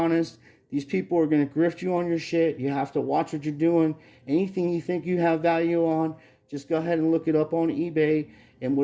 These people are going to grift you on your shit. You have to watch what you're doing. Anything you think you have value on, just go ahead and look it up on eBay. And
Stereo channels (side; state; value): both; identical; correlation 1.00